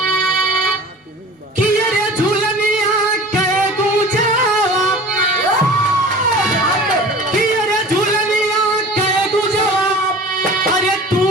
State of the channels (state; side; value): normal; both; correlation 0.41